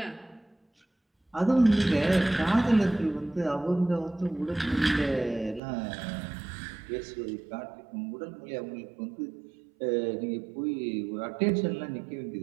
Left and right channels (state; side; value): drops out; left; at 5.6 s